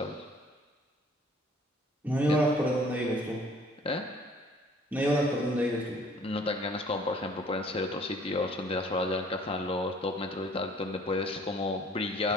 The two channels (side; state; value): both; normal; correlation 0.55